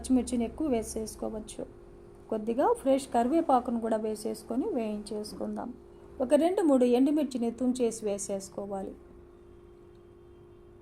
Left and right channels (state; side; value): identical; both; correlation 1.00